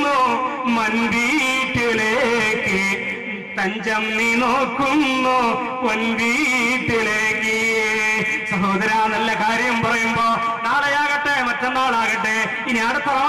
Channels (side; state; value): both; identical; correlation 1.00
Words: മൻവീട്ടിലേക്ക്, തഞ്ചം നീ നോക്കുന്നു പൊൻവീട്ടിലേക്ക്. സഹോദര, നല്ല കാര്യം പറയുമ്പോ നാളെയാകട്ടെ, മറ്റന്നാളാകട്ടെ, ഇനി അടുത്ത